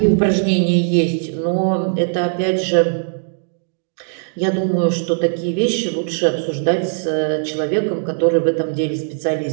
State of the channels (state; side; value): silent; left; digital silence